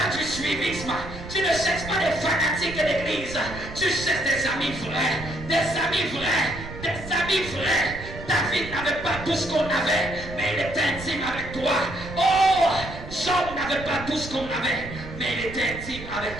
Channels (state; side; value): noise; right; rumble, 12 dB below the sound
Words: du suivisme. Tu ne cherches pas des fanatiques de l'église. Tu cherches des amis vrais. Des amis vrais. Des amis vrais. David n'avait pas tout ce qu'on avait, mais il était intime avec toi. Oh, Job n'avait pas tout ce qu'on avait, mais il était intime avec